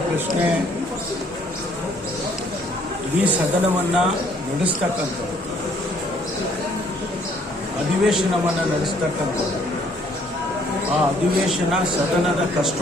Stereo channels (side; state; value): both; normal; correlation 0.63